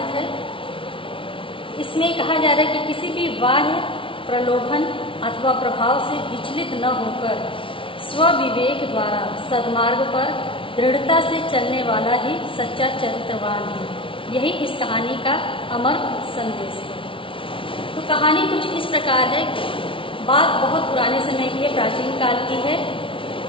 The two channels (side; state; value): right; late; 0.25 ms